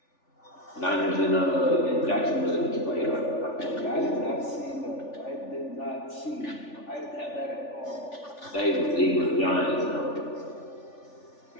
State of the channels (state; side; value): late; right; 3.4 ms